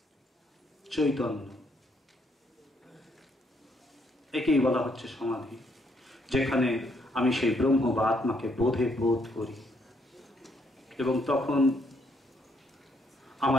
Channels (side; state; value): both; normal; correlation 0.72